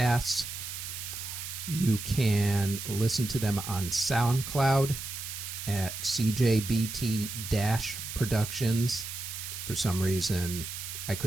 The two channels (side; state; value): right; noise; hiss, 7 dB below the sound